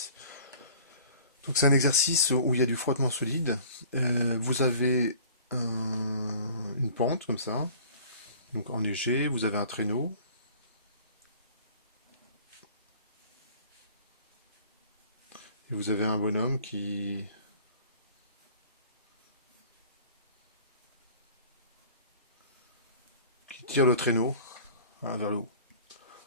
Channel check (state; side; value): inverted; both; correlation -0.48